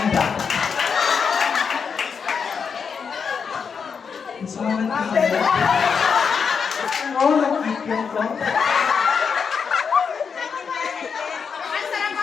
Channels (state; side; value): quieter; right; 6.1 dB